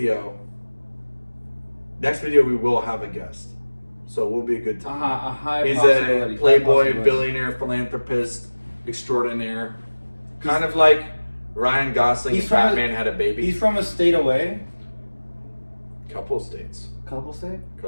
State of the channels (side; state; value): both; inverted; correlation -1.00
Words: we will have a guest. So it will be a good time. A high He's possibility. a playboy, billionaire, philanthropist extraordinaire. Kind of like Ryan Gosling and Batman had a baby. He's from a state away. Couple states. Couple